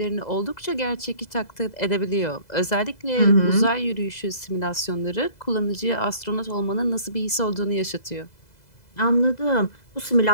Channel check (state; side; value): late; right; 2.0 ms